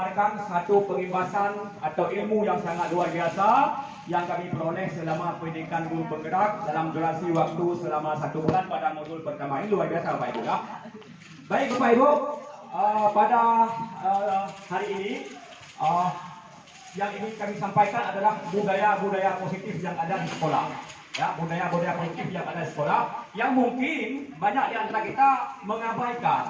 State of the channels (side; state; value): both; identical; correlation 1.00